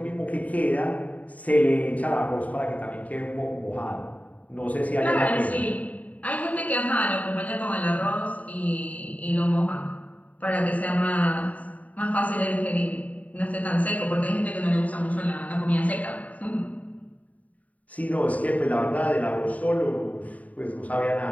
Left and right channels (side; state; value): right; late; 0.070 ms